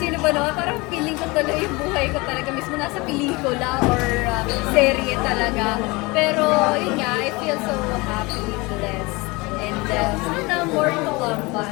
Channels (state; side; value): quieter; right; 24.8 dB